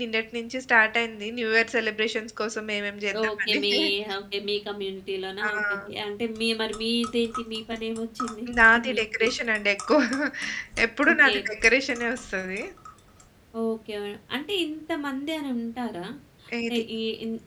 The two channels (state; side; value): identical; both; correlation 1.00